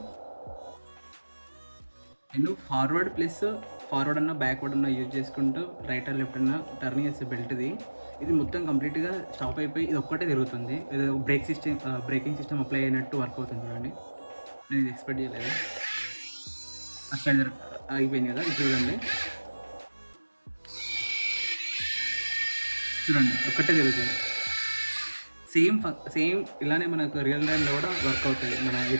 నేను ఫార్వర్డ్ అన్న బ్యాక్వర్డ్ అన్న యూజ్ చేసుకుంటూ రైట్ అండ్ లెఫ్ట్ అన్న టర్న్ చేసే బెల్ట్ది. ఇది మొత్తం కంప్లీట్గా స్టాప్ అయిపోయి ఇది ఒక్కటే తిరుగుతుంది. ఇది బ్రేకింగ్ సిస్టమ్ అప్లై అయినట్టు వర్క్ అవుతుంది. చూడండి, నేను ఇది ఎక్స్పెక్ట్ చేయలేదు. అసలు అయిపోయింది కదా, ఇది చూడండి ఒక్కటే తిరుగుతుంది. సేమ్ ఇలానే మనకు రియల్ టైంలో కూడా వర్క్ అవుతుంది. మన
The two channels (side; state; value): both; inverted; correlation -1.00